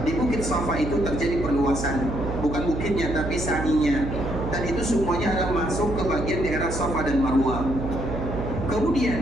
di bukit Safa itu terjadi perluasan, bukan bukitnya tapi sa'inya, dan itu semuanya adalah masuk ke bagian daerah Safa dan Marwah.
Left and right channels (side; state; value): right; noise; hum, 5 dB below the sound